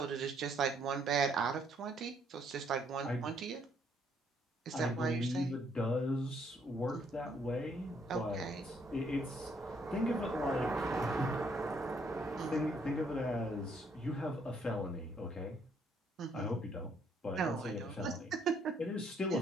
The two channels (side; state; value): both; normal; correlation 0.69